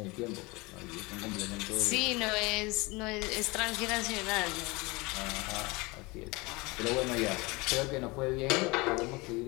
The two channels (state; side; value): quieter; right; 24.8 dB